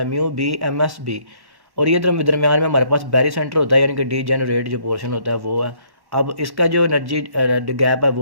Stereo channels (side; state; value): left; late; 1.1 ms